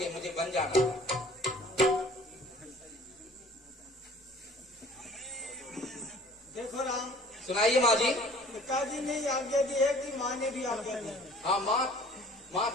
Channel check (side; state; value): both; normal; correlation 0.51